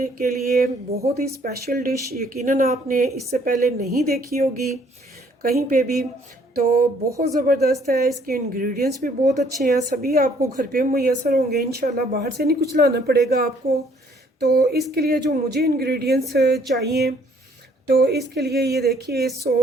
के लिए बहुत ही स्पेशल डिश। यकीनन आपने इससे पहले नहीं देखी होगी कहीं पे भी। तो बहुत ज़बरदस्त है, इसके इंग्रेडिएंट्स भी बहुत अच्छे हैं, सभी आपको घर पे मुयसर होंगे इंशाल्लाह, बाहर से नहीं कुछ लाना पड़ेगा आपको। तो इसके लिए जो मुझे इंग्रेडिएंट्स चाहिए, तो इसके लिए ये देखिए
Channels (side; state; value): both; normal; correlation 0.62